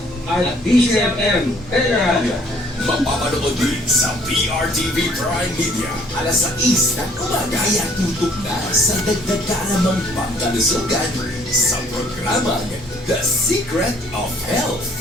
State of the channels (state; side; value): normal; both; correlation 0.60